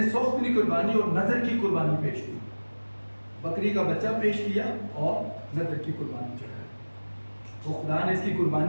सौख की कुर्बानी और नजर की कुर्बानी पेश की। बकरी का बच्चा पेश किया और नजर की कुर्बानी चढ़ाई। तो खुदा ने इसकी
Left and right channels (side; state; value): both; inverted; correlation -1.00